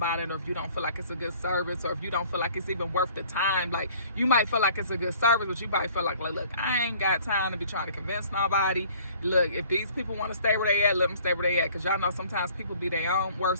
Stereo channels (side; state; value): both; inverted; correlation -0.54